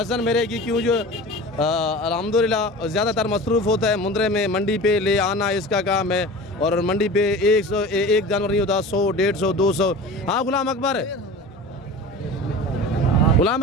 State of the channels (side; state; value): both; normal; correlation 0.35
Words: मेरे की क्यों जो अल्हम्दुलिल्लाह ज़्यादातर मसरूफ़ होता है मुंद्रे में, मंडी पे ले आना इसका काम है। और मंडी पे 1 जानवर नहीं होता, 100, 150, 200। हाँ गुलाम